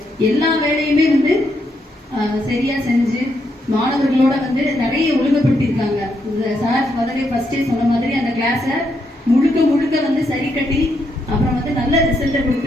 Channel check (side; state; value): both; normal; correlation 0.78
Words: எல்லா வேலையுமே வந்து சரியா செஞ்சு மாணவர்களோட வந்து நிறைய ஒழுங்குபடுத்தியிருக்காங்க. இந்த சார் முதலே ஃபர்ஸ்டே சொன்ன மாதிரி அந்த கிளாஸை முழுக்க வந்து சரி கட்டி அப்புறம் வந்து நல்ல ரிசல்ட்டை